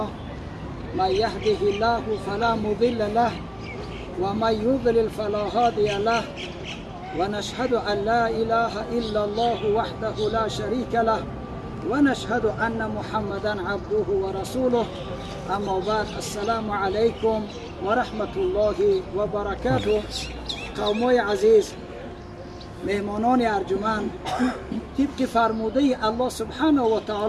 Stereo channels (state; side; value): identical; both; correlation 1.00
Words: من يهده الله فلا مضل له ومن يضلل فلا هادي له ونشهد أن لا إله إلا الله وحده لا شريك له ونشهد أن محمدا عبده ورسوله اما بعد السلام علیکم و رحمت الله و برکاته. قومای عزیز، مهمانان ارجمند، طبق فرموده الله سبحانه و